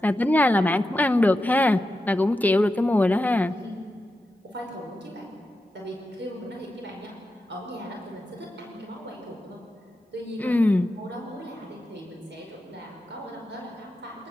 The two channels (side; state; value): both; normal; correlation 0.89